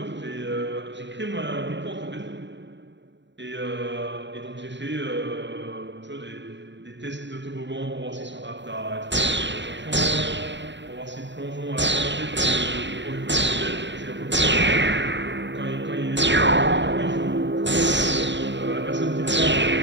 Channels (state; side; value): late; left; 0.52 ms